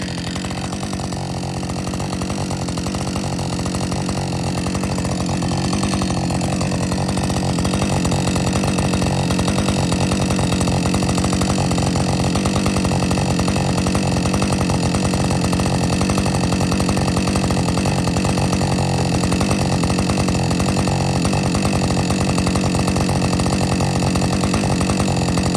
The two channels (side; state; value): both; identical; correlation 1.00